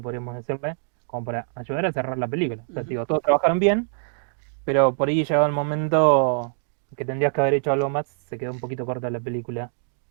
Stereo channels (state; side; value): silent; left; digital silence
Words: podríamos decirle, como para ayudar a cerrar la película. O sea, Ujú. digo, todos trabajaron bien, pero por ahí llegado el momento que tendrías que haber hecho algo más, se quedó un poquito corta la película,